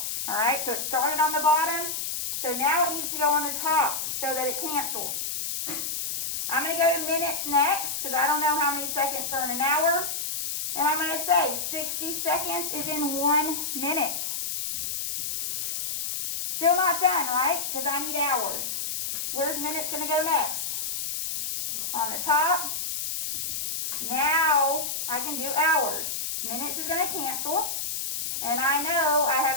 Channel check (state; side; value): noise; left; hiss, 3 dB below the sound